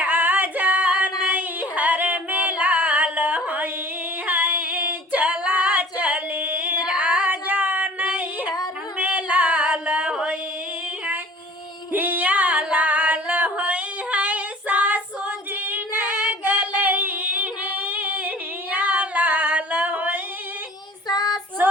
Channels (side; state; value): both; normal; correlation 0.46